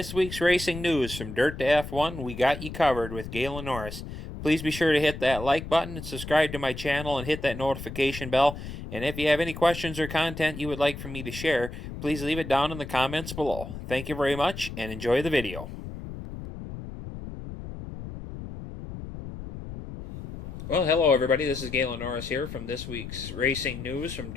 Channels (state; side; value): noise; left; rumble, 10 dB below the sound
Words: week's racing news from Dirt to F1, we got you covered with Galen Norris. Please be sure to hit that like button and subscribe to my channel and hit that notification bell. And if you have any questions or content you would like for me to share, please leave it down in the comments below. Thank you very much and enjoy the video. Well, hello everybody. This is Galen Norris here from this week's racing news from